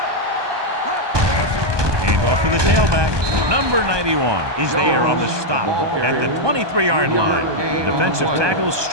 Hand off to the tailback. Number 91 is there on the stop at the 23-yard line. The defensive tackle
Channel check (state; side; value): late; left; 1.2 ms